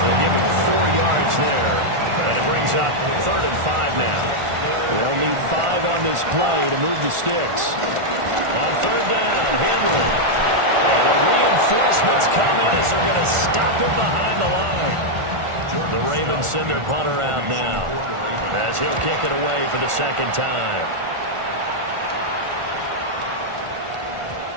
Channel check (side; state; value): left; late; 1.4 ms